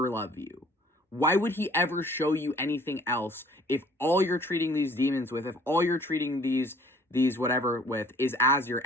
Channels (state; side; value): normal; both; correlation 0.55